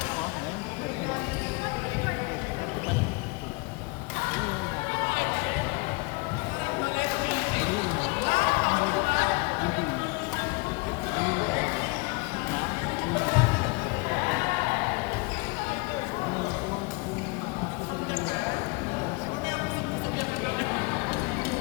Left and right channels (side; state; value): right; quieter; 27.9 dB